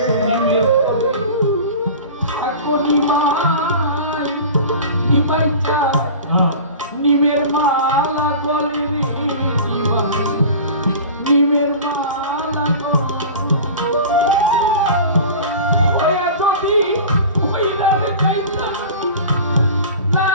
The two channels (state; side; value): inverted; both; correlation -0.36